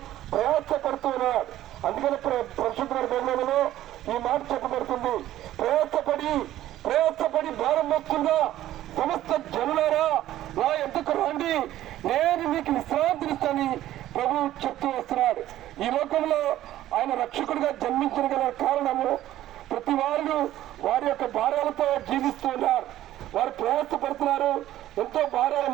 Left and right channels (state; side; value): quieter; left; 13.6 dB